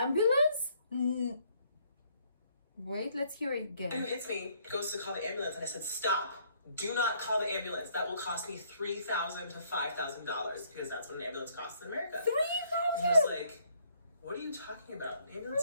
Wait, let's hear it who again. hits me goes to call the ambulance, and I said, stop. Do not call the ambulance. That will cost me $3,000 to $5,000 because that's what an ambulance costs in America. And he was like, what are you talking about? An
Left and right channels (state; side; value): inverted; both; correlation -0.66